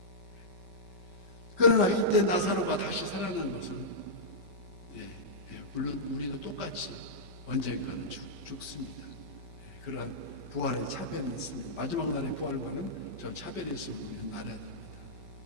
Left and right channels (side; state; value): left; late; 5.2 ms